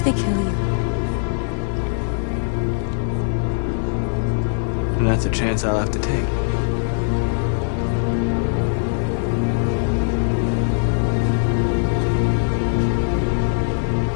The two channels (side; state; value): right; silent; 58 dB below the other